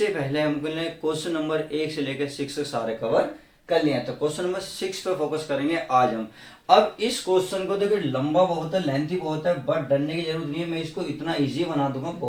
पहले हमने क्वेश्चन नंबर 1 से लेकर 6 सारे कवर कर लिया। तो क्वेश्चन नंबर 6 पे फोकस करेंगे आज हम। अब इस क्वेश्चन को देखिए लंबा बहुत है, लेंथी बहुत है, बट डरने की जरूरत नहीं है। मैं इसको इतना इजी बना दूंगा,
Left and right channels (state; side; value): identical; both; correlation 1.00